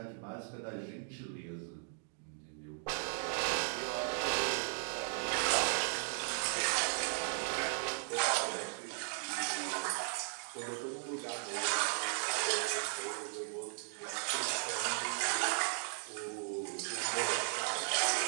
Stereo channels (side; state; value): left; silent; 53 dB below the other